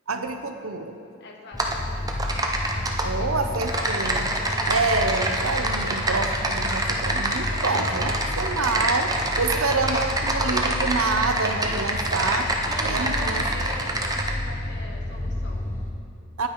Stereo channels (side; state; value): both; normal; correlation 0.06